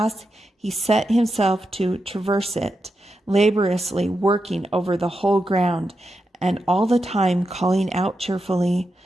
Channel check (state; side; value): normal; both; correlation 0.87